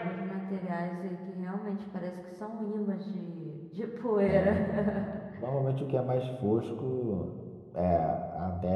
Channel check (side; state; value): both; identical; correlation 1.00